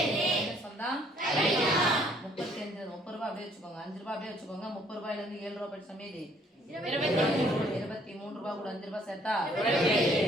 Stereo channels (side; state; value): both; normal; correlation 0.63